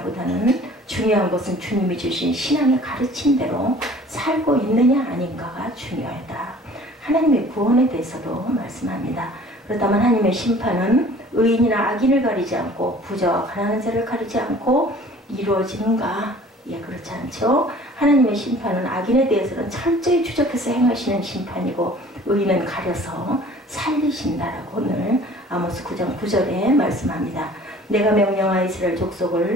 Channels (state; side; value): normal; both; correlation 0.49